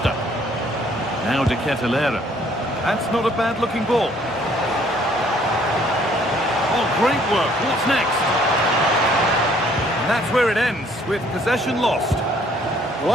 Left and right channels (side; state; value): both; normal; correlation 0.62